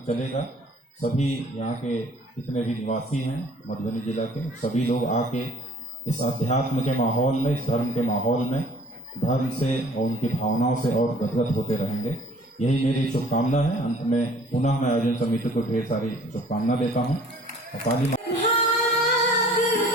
चलेगा, सभी यहाँ के जितने भी निवासी हैं मधुबनी जिला के, सभी लोग आके इस अध्यात्म के माहौल में, इस धर्म के माहौल में धर्म से और उनकी भावनाओं से और गदगद होते रहेंगे। यही मेरी शुभकामना है। अंत में पुनः मैं आयोजन समिति को ढेर सारी शुभकामना देता हूँ। काली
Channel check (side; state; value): both; normal; correlation 0.53